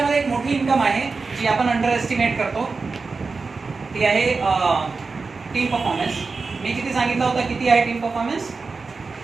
एक मोठी इन्कम आहे जी आपण अंडर एस्टिमेट करतो, ती आहे टीम परफॉर्मन्स. मी किती सांगितलं होतं, किती आहे टीम परफॉर्मन्स?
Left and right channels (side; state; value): left; quieter; 4.3 dB